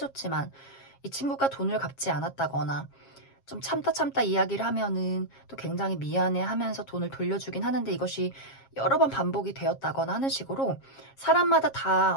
이 친구가 돈을 갚지 않았다거나 좀 참다 이야기를 하면은 또 굉장히 미안해 하면서 돈을 돌려주긴 하는데 이것이 여러 번 반복이 되었다거나 하는 식으로 사람마다 다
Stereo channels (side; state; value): right; late; 7.4 ms